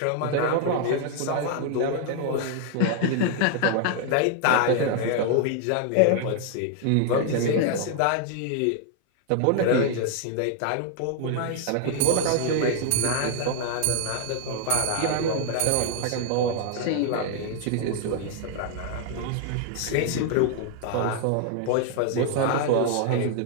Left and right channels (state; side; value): different; both; correlation 0.00